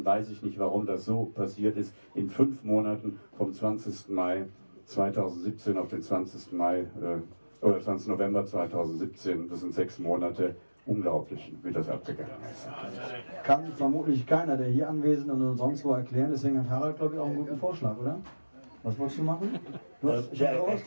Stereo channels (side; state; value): both; inverted; correlation -1.00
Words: weiß ich nicht, warum das so passiert ist. In 5 Monaten vom 20. Mai 2017 auf den 20. Mai oder 20. November 2017, das sind 6 Monate, unglaublich, wie das abgegangen ist. Kann vermutlich keiner, der hier anwesend und sonst wo erklären, deswegen hat Harald, glaube ich, auch einen guten Vorschlag, oder? Was wolltest du machen? Ich